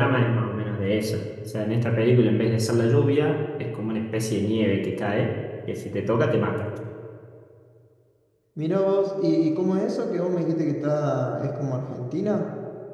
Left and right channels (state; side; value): identical; both; correlation 1.00